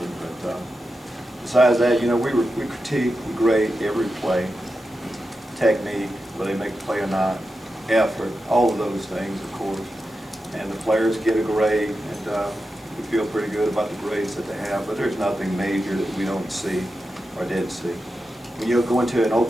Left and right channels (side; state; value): both; normal; correlation 0.90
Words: but besides that, you know, we critique, we grade every play, technique, whether they make the play or not, effort, all of those things, of course. And the players get a grade, and we feel pretty good about the grades that they have, but there's nothing major that we don't see or didn't see. When you go into an